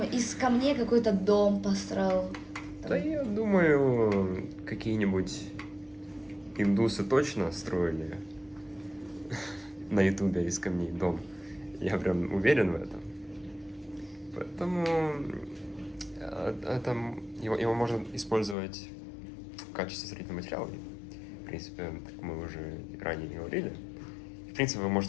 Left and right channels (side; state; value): right; drops out; at 18.6 s